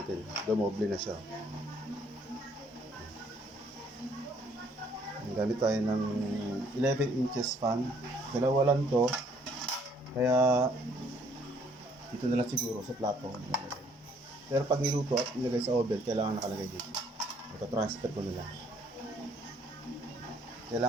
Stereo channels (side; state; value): both; normal; correlation 0.64